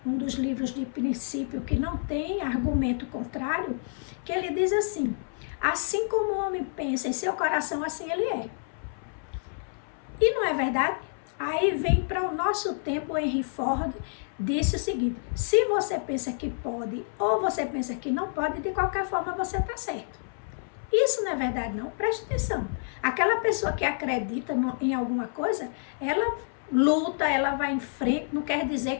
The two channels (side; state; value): right; silent; 59 dB below the other